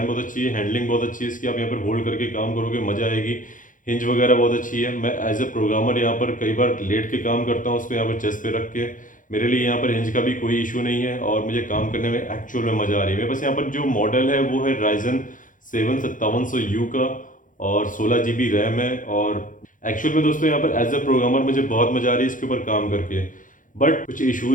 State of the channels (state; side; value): late; right; 0.38 ms